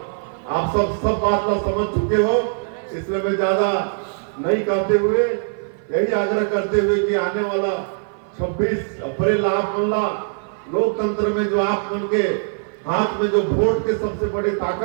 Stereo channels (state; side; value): silent; left; 56 dB below the other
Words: आप सब बात ला समझ चुके हो, इसलिए मैं ज्यादा नहीं कहते हुए यही आग्रह करते हुए कि आने वाला 26 अप्रैल आप मन ला लोकतंत्र में जो आप मन के हाथ में जो वोट के सबसे बड़ी